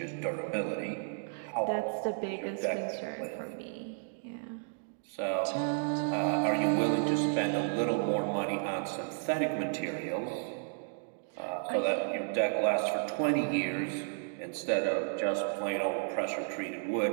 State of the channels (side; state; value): left; silent; digital silence